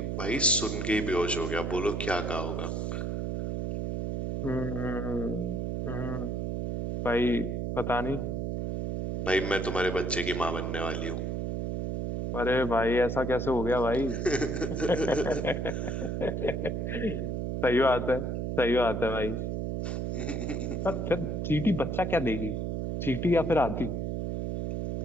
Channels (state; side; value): noise; right; hum, 1 dB below the sound